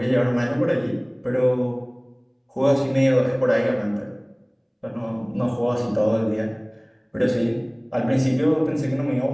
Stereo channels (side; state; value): both; identical; correlation 1.00